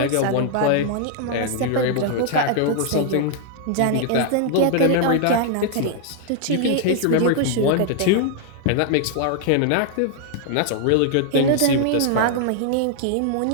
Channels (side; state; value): both; different; correlation 0.00